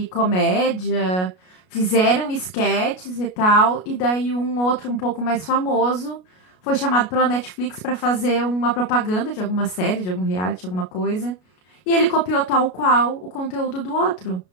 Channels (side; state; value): right; late; 33 ms